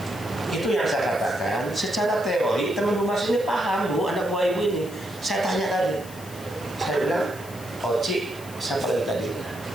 Itu yang saya katakan, secara teori teman humas ini paham Bu, anak buah ibu ini. Saya tanya tadi. Saya bilang, Oci, siapa lagi tadi?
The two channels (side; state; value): left; noise; hiss, 18 dB below the sound